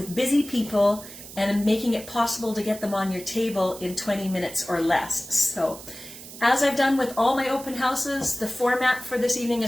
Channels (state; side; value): noise; right; hiss, 15 dB below the sound